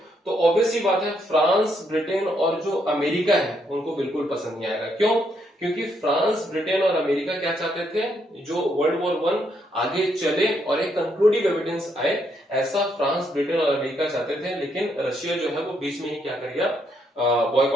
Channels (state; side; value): normal; both; correlation 0.75